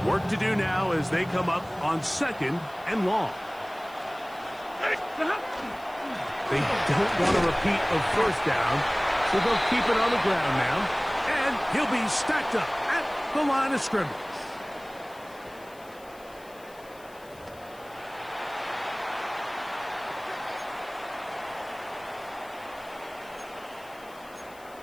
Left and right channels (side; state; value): left; noise; hiss, 25 dB below the sound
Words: Work to do now as they come up on 2nd and long. They don't want a repeat of first down, so they'll keep it on the ground now. And he'll be stacked up at the line of scrimmage.